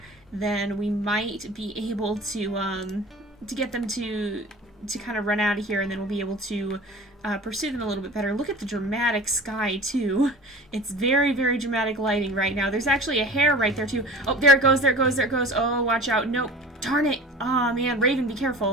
then we might be able to get them to kind of run out of here, and then we'll be able to pursue them a little bit better. Look at the dramatic sky, too. It's very, very dramatic lighting right now. There's actually a hare right there, too. Oh, there it goes, there it goes, there it goes. Oh, watch out. Nope. Darn it. Oh, man. Raven, be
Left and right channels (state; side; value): normal; both; correlation 0.39